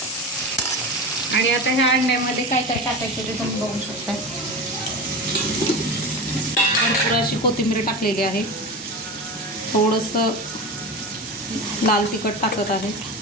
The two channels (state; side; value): normal; both; correlation 0.26